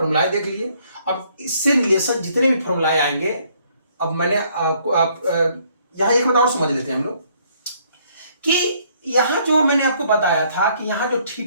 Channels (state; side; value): inverted; both; correlation -0.66